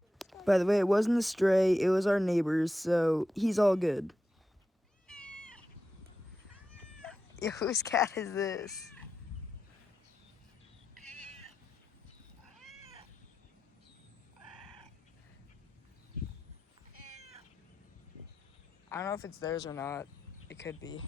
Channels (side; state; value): both; normal; correlation 0.89